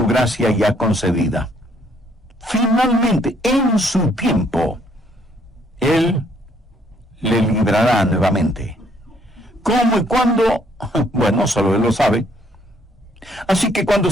gracia ya concedida. Finalmente, en su tiempo, Él le librará nuevamente. ¿Cómo y cuándo? Bueno, solo Él lo sabe. Así que cuando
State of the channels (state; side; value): normal; both; correlation 0.66